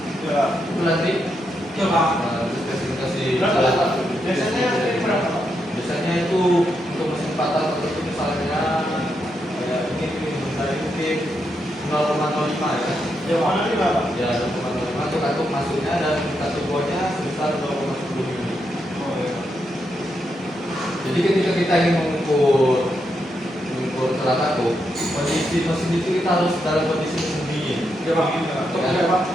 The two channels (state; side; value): normal; both; correlation 0.82